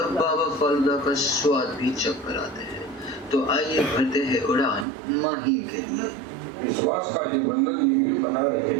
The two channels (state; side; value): drops out; left; at 4.9 s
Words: बाबा फालूदा का स्वाद भी चख कर आते हैं। तो आइए भरते हैं उड़ान माहिम के लिए। विश्वास का ये बंधन यूं ही बना रहे,